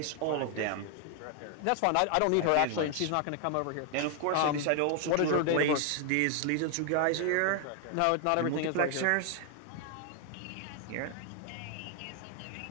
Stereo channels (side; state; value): both; different; correlation 0.00